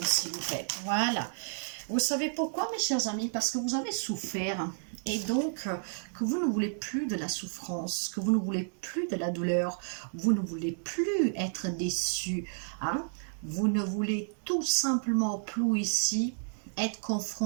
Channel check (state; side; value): silent; left; digital silence